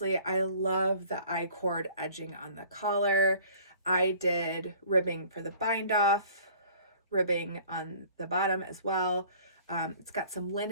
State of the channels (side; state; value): both; inverted; correlation -0.52